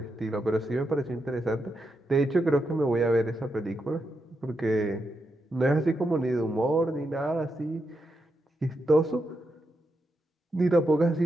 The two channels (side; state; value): both; normal; correlation 0.85